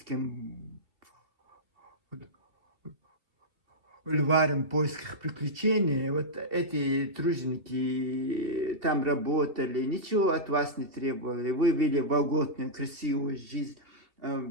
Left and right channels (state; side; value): late; left; 2.7 ms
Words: бульварам в поисках приключений, вот эти труженики там работали, ничего от вас не требовали. Вы вели вольготную, красивую жизнь.